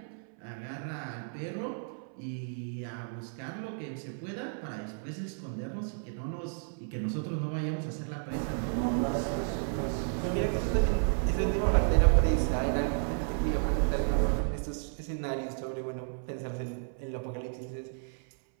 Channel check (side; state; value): left; silent; 56 dB below the other